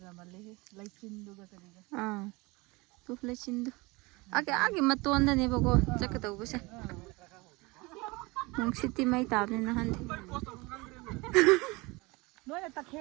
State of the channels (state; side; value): quieter; left; 24.6 dB